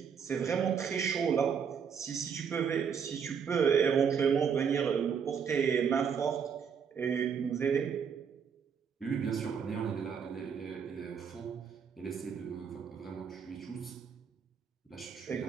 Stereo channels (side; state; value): left; quieter; 6.9 dB